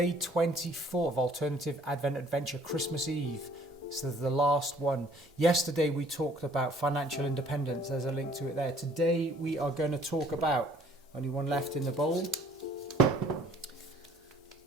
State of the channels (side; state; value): both; normal; correlation 0.58